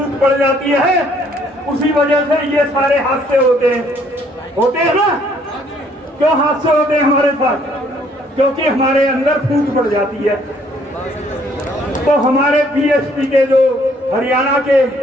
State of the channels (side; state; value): both; normal; correlation 0.63